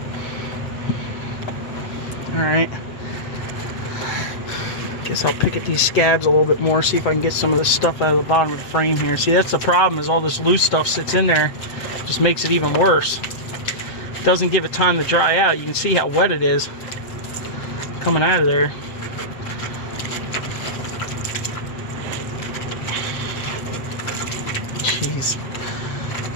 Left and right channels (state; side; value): late; right; 7.8 ms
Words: Alright. Guess I'll pick at these scabs a little bit more, see if I can get some of this stuff out of the bottom of the frame here. See, that's the problem, is all this loose stuff sits in there. Just makes it even worse. Doesn't give it time to dry out. You can see how wet it is coming out of there. Jeez.